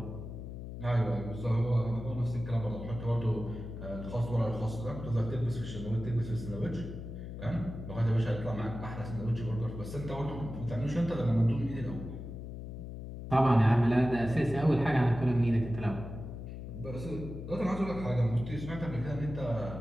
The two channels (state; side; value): noise; left; hum, 9 dB below the sound